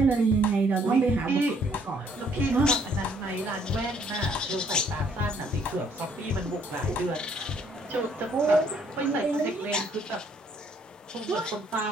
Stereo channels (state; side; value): normal; both; correlation 0.65